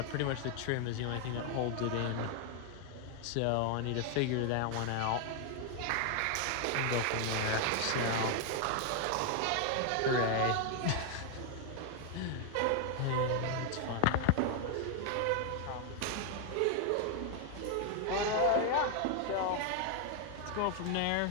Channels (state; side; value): different; both; correlation 0.00